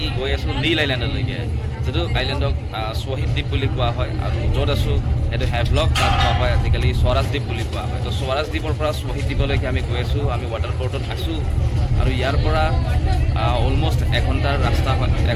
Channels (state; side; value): identical; both; correlation 1.00